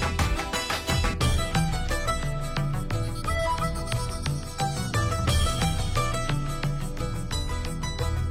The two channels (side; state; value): both; identical; correlation 1.00